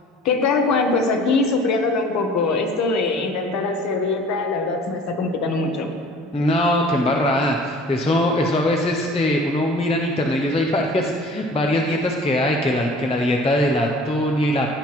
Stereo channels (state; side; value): normal; both; correlation 0.47